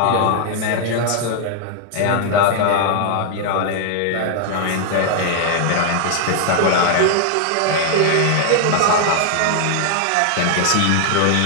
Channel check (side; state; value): both; different; correlation 0.00